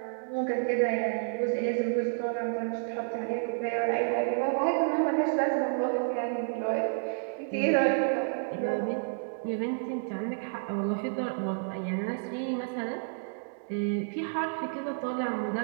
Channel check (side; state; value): left; silent; digital silence